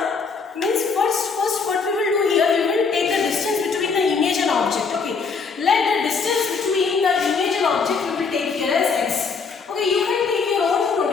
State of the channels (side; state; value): right; quieter; 5.1 dB